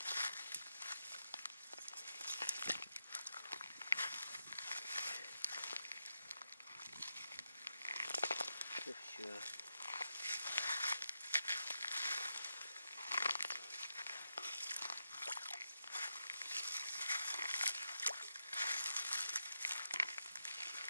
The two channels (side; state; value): both; inverted; correlation -0.86